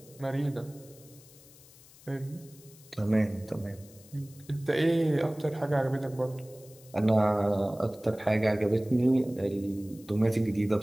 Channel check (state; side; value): noise; left; hiss, 23 dB below the sound